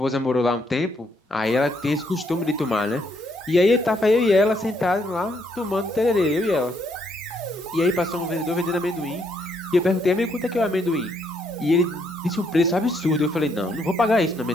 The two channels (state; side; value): normal; both; correlation 0.73